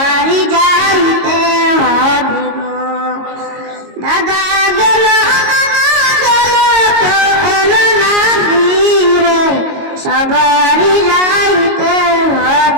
যাইতে হবে গো। দাদা গেল নানা গেল এলো না ফিরে, সবারই যাইতে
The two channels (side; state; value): left; late; 22 ms